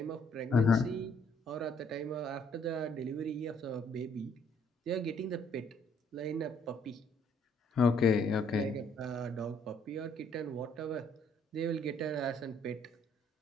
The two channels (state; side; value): normal; both; correlation 0.66